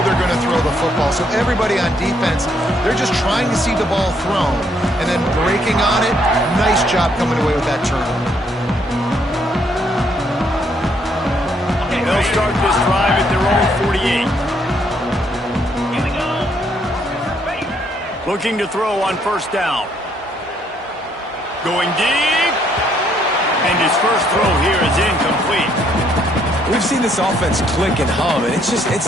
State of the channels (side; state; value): both; normal; correlation 0.70